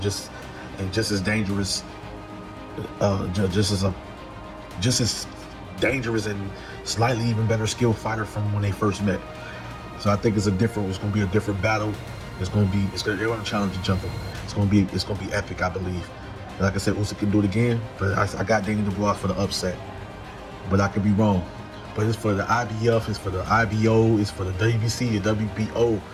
as dangerous, just as dangerous and slightly even better skilled fighter from when they first met. So I think it's going to be a different battle. They're going to challenge each other. It's going to be epic, I believe. And like I said, Usyk can do it again, but I got Daniel Dubois for the upset. But I could be wrong. But it's for the IBF, it's for the IBO, it's for the WBC, the WBO.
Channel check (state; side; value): identical; both; correlation 1.00